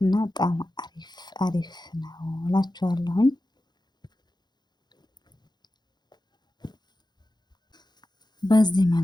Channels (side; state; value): right; late; 0.21 ms